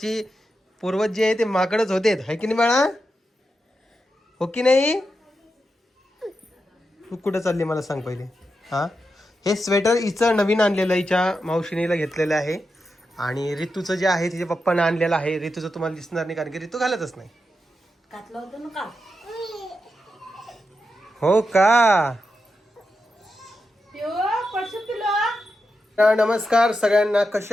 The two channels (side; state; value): both; normal; correlation 0.88